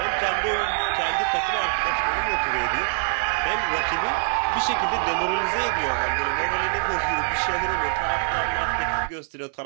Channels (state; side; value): silent; left; digital silence